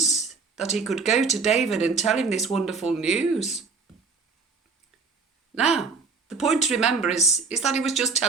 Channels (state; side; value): quieter; left; 4.7 dB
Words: that he could go to David and tell him this wonderful news. Now, the point to remember is that he was just